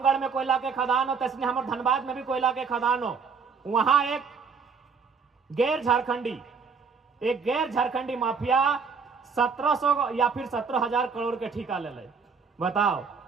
में कोयला के खदान हो, तो इसलिए हमारे धनबाद में भी कोयला के खदान हो। वहां एक गैर झारखंडी माफिया 1700 या फिर 17,000 करोड़ के ठेका ले ले। बताओ,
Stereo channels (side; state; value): left; quieter; 5.5 dB